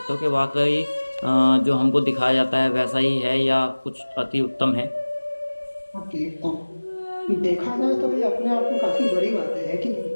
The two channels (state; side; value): inverted; both; correlation -1.00